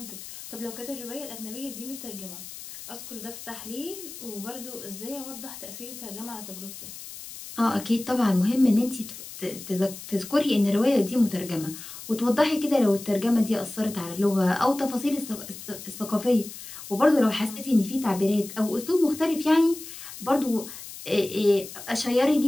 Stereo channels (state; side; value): noise; left; hiss, 13 dB below the sound